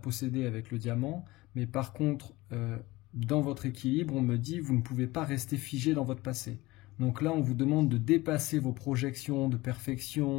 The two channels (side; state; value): right; quieter; 20.2 dB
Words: avec le diamant, mais par contre, dans votre équilibre, on me dit vous ne pouvez pas rester figé dans votre passé. Donc là, on vous demande de dépasser vos projections de